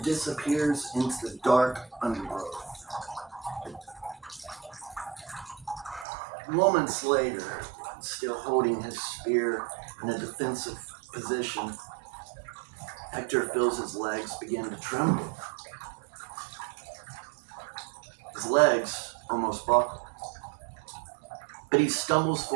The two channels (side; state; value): left; drops out; at 6.1 s